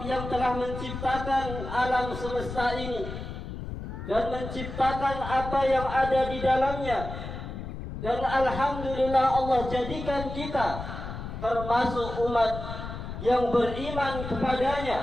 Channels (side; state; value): left; noise; rumble, 8 dB below the sound